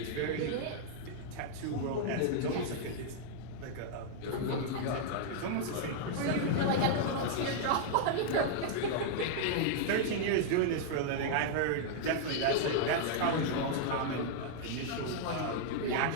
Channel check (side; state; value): both; different; correlation -0.01